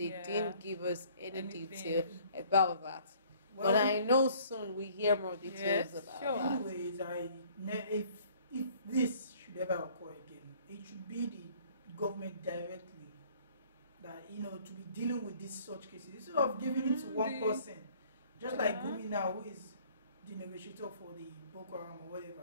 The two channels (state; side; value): inverted; both; correlation -0.57